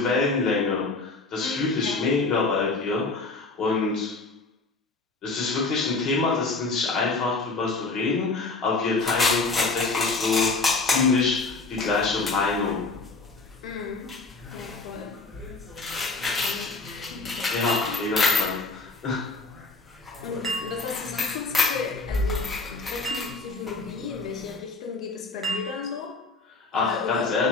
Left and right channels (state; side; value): quieter; right; 3.7 dB